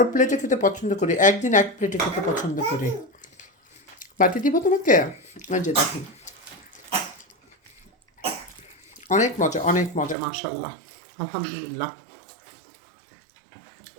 প্লেটে খেতে পছন্দ করি, একদিন এক প্লেটে খেতে পছন্দ করি। বাটি দিব তোমাকে? ওই যে দেখেন, অনেক মজা, অনেক মজা, মাশাল্লাহ, আলহামদুলিল্লাহ।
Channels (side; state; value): left; drops out; at 10.2 s